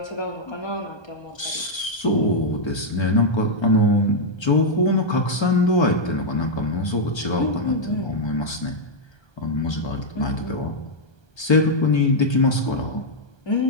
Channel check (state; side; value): late; right; 1.3 ms